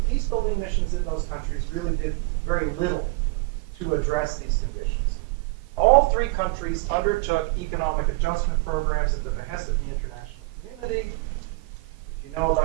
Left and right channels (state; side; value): quieter; left; 25.0 dB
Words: peace-building missions in those countries really did very little to address these conditions. All three countries undertook economic adjustment programs at the behest of the international community. If you know